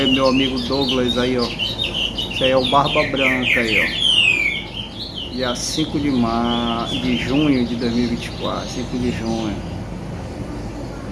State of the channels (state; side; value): identical; both; correlation 1.00